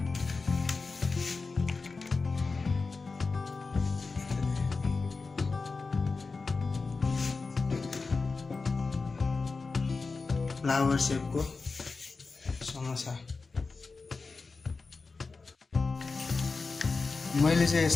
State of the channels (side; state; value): right; quieter; 4.2 dB